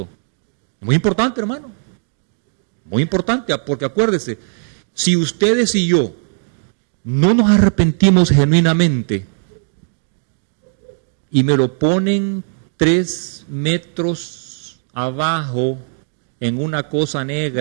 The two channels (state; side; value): silent; left; digital silence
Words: Muy importante, hermano. Muy importante, porque acuérdese, si ustedes y yo no nos arrepentimos genuinamente y me lo ponen 3 metros abajo en una cosa